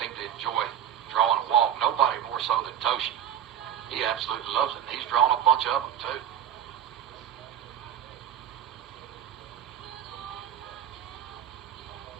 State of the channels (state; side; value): quieter; left; 9.7 dB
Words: seem to enjoy drawing a walk. Nobody more so than Toshi. He absolutely loves it, and he's drawn a bunch of them, too.